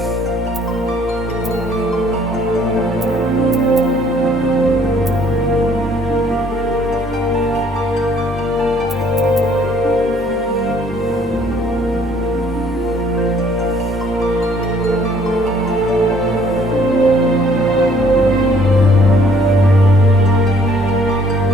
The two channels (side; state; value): both; normal; correlation 0.61